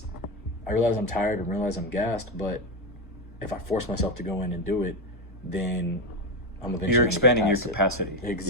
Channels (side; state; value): both; normal; correlation 0.12